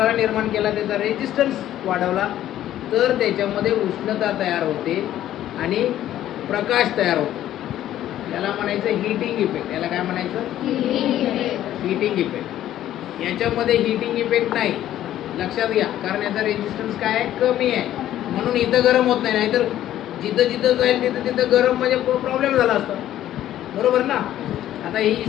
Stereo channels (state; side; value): quieter; right; 12.5 dB